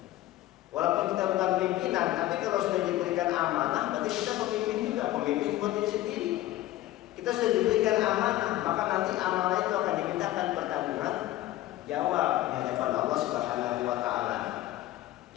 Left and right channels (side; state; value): right; quieter; 15.4 dB